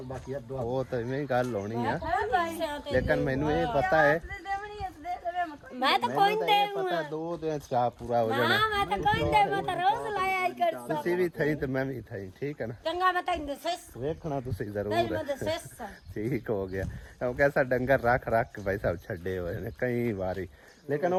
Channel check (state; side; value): identical; both; correlation 1.00